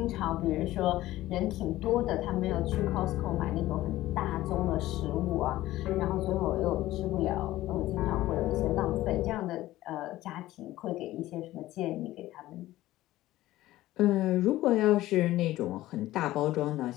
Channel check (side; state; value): right; quieter; 15.9 dB